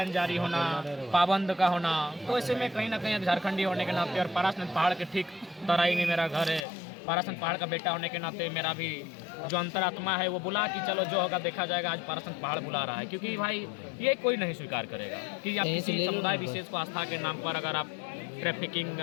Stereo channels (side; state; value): right; drops out; at 6.7 s